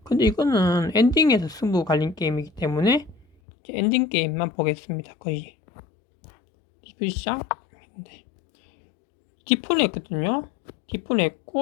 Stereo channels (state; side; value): drops out; right; at 3.2 s